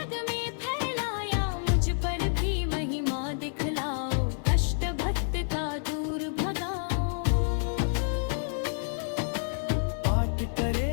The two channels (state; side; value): silent; right; digital silence